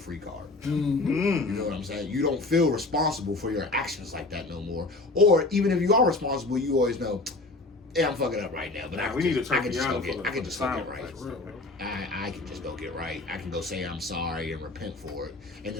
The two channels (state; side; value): quieter; right; 3.2 dB